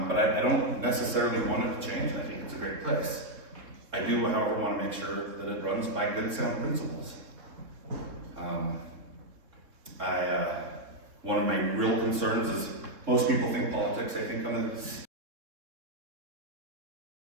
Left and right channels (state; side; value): late; left; 3.5 ms